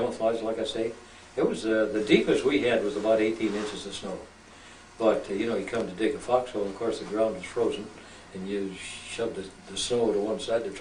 like I say. It was the deepest we had was about 18 inches of snow. But you know, you come to dig a foxhole, and of course the ground is frozen, and you shove the snow to one side to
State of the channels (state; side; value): identical; both; correlation 1.00